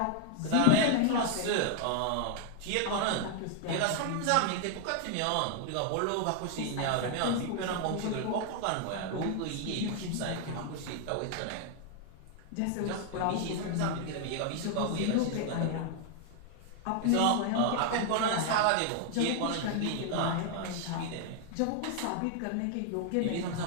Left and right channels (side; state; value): both; different; correlation 0.00